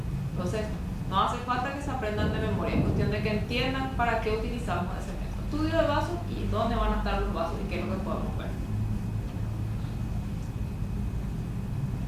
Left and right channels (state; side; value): identical; both; correlation 1.00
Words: Entonces, no hace falta que se aprendan de memoria, es cuestión de que entiendan para qué utilizamos ese método. Estudio de vasos y dónde van a estar los vasos y qué es lo que podemos ver.